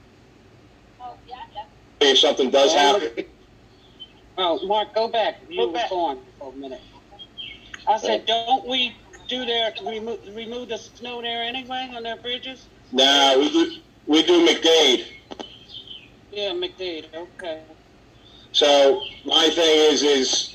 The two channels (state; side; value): identical; both; correlation 1.00